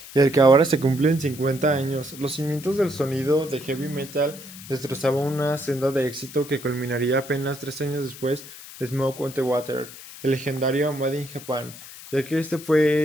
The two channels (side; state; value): left; noise; hiss, 15 dB below the sound